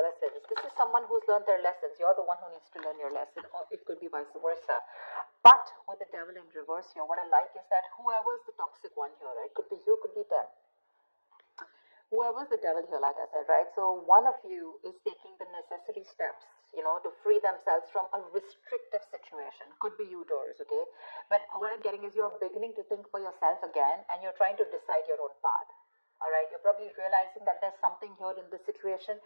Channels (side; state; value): both; inverted; correlation -1.00